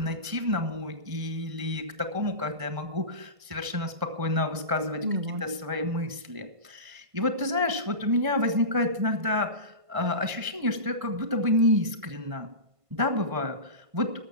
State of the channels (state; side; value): late; left; 1.5 ms